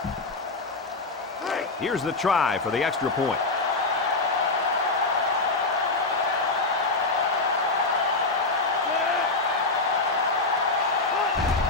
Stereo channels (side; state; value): right; quieter; 3.5 dB